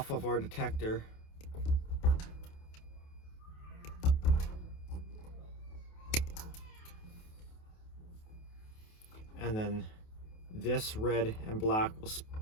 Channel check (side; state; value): right; late; 28 ms